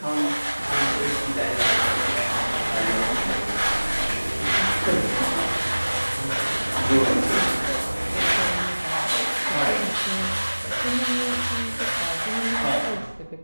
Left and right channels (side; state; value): both; inverted; correlation -1.00